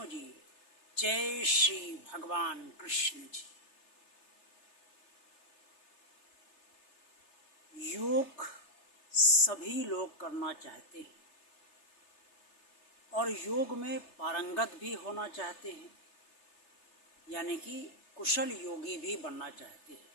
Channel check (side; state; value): right; late; 3.3 ms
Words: जी, जय श्री भगवान कृष्ण जी। योग सभी लोग करना चाहते हैं और योग में पारंगत भी होना चाहते हैं, यानी कि कुशल योगी भी बनना चाहते हैं।